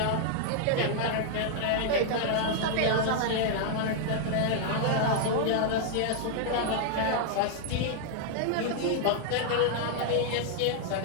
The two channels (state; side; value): different; both; correlation 0.00